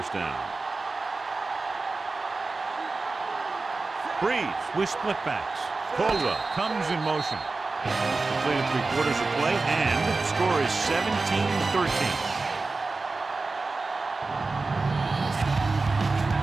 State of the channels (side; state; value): left; quieter; 3.7 dB